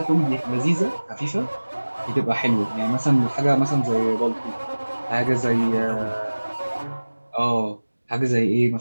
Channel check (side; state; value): both; inverted; correlation -1.00